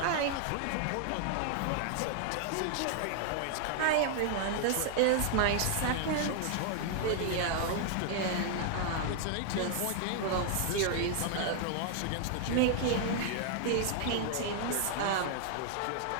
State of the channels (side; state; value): both; different; correlation 0.00